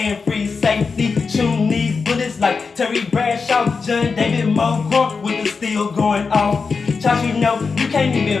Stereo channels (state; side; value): quieter; right; 4.9 dB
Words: free safety. Shooting these bullets like Terry Bradshaw, John David Moore with the steel going off. Josh, you know you can't